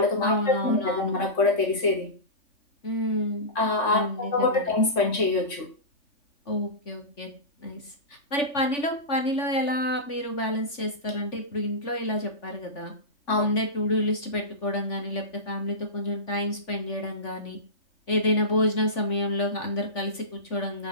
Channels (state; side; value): late; right; 3.5 ms